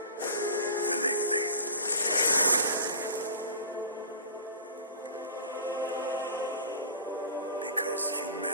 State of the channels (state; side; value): inverted; both; correlation -0.37